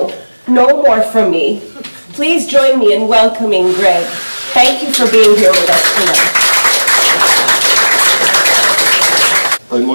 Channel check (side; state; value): both; inverted; correlation -1.00